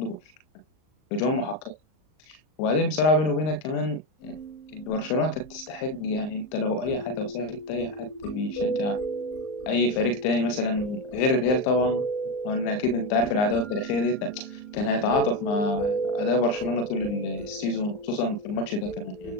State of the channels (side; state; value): right; late; 39 ms